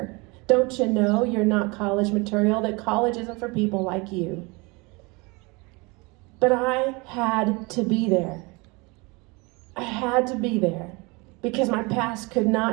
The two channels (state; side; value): quieter; left; 26.9 dB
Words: Don't you know you're not college material, that college isn't for people like you? But I had to be there. I had to be there because my past could